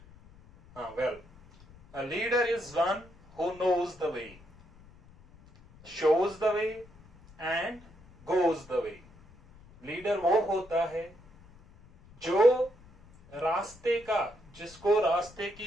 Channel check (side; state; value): left; noise; rumble, 24 dB below the sound